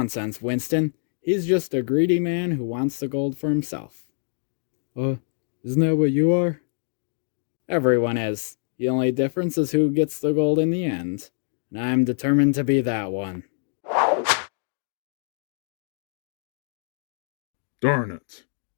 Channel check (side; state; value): right; silent; 62 dB below the other